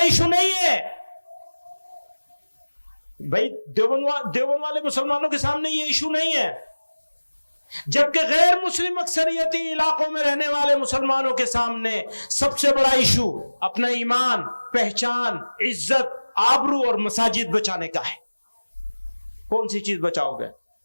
نہیں ہے۔ بھائی دیوبند والے مسلمانوں کے سامنے یہ ایشو نہیں ہے، جبکہ غیر مسلم اکثریتی علاقوں میں رہنے والے مسلمانوں کے سامنے سب سے بڑا ایشو اپنا ایمان، پہچان، عزت، آبرو اور مساجد بچانے کا ہے۔ کون سی چیز بچاؤ گے؟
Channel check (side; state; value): both; inverted; correlation -1.00